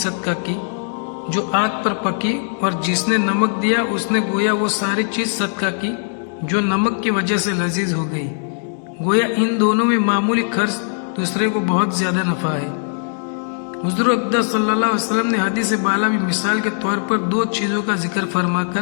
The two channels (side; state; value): right; silent; digital silence